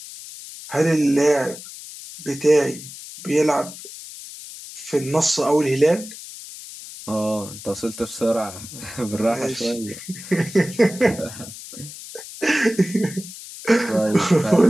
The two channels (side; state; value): left; noise; hiss, 14 dB below the sound